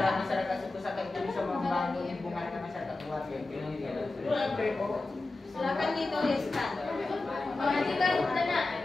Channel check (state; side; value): quieter; right; 3.2 dB